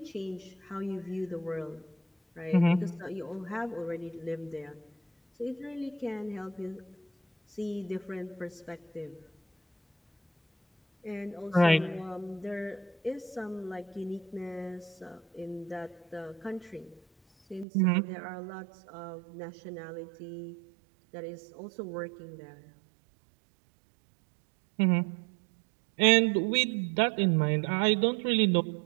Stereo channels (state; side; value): drops out; left; at 17.7 s